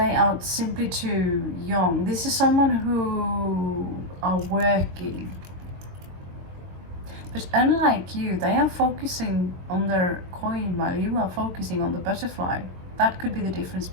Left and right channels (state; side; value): late; left; 22 ms